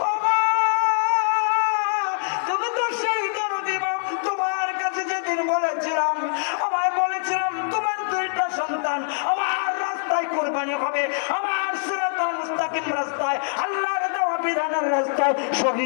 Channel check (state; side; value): silent; right; digital silence